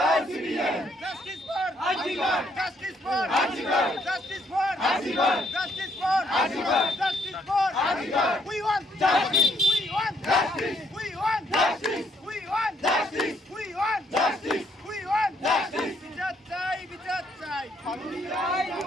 justice for justice for justice for justice for justice for we want justice we want justice we want justice we want justice we want justice we want justice বিচার চাই, বিচার চাই,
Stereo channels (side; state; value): both; normal; correlation 0.70